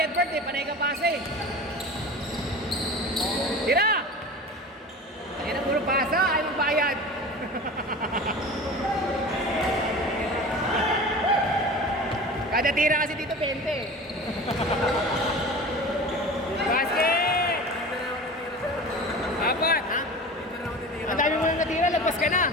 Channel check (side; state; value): both; normal; correlation 0.35